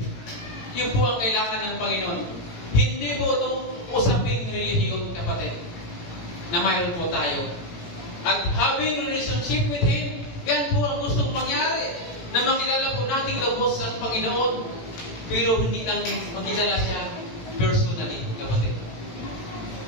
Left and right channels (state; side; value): late; right; 18 ms